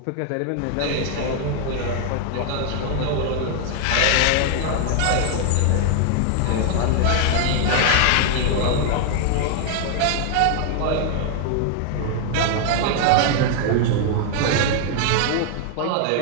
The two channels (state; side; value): different; both; correlation 0.00